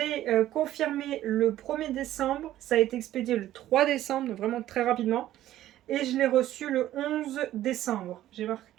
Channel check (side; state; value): left; quieter; 13.5 dB